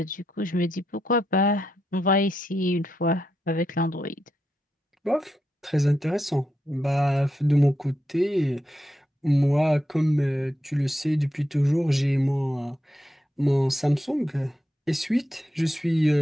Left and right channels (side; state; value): both; normal; correlation 0.83